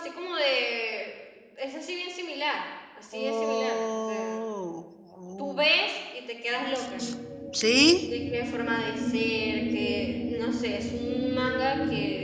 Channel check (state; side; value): identical; both; correlation 1.00